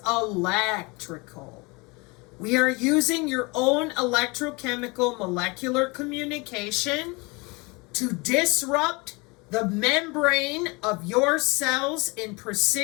electrical. We are using your own electrochemical molecular communication to disrupt the membrane of your cells in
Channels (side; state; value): right; quieter; 26.9 dB